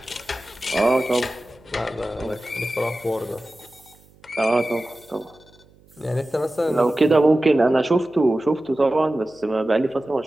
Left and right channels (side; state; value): right; noise; hum, 29 dB below the sound